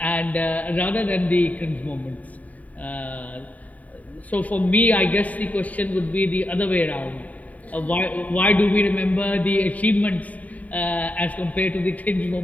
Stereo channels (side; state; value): right; late; 0.071 ms